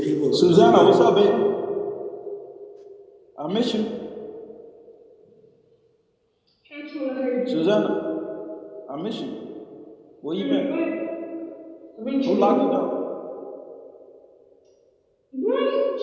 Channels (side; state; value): both; identical; correlation 1.00